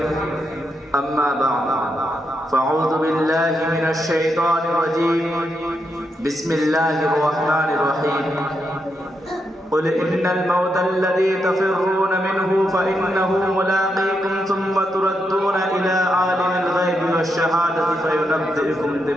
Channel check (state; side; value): normal; both; correlation 0.83